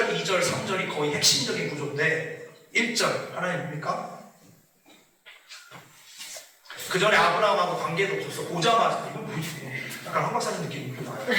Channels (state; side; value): identical; both; correlation 1.00